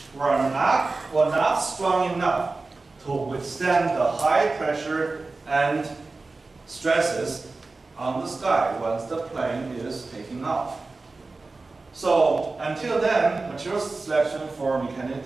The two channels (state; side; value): quieter; left; 3.6 dB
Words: were not strong enough to withstand the high pressure and stresses on the sky once the plane is taking off. So until then, material selection for mechanical